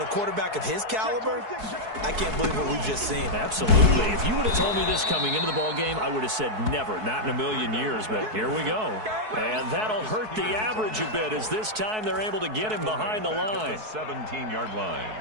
a quarterback of his caliber, I can't believe what we've just seen. Absolutely. If you would have told me this coming into the ball game, I would have said never, not in a million years. But here we go. And that'll hurt the average a bit as this time they're able to get him behind the line. 17-yard line.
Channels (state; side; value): late; left; 4.6 ms